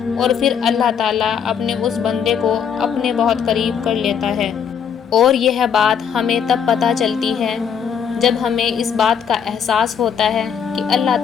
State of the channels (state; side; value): quieter; right; 7.5 dB